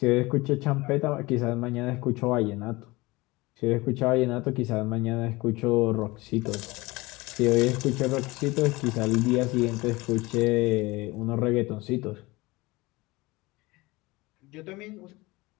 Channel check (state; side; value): quieter; right; 22.0 dB